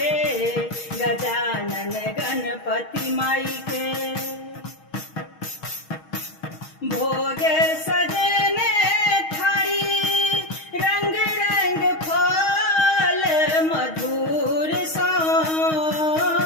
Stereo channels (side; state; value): right; late; 6.3 ms